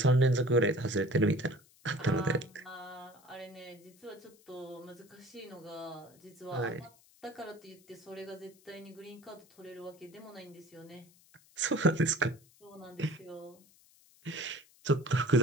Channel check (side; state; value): left; noise; hiss, 28 dB below the sound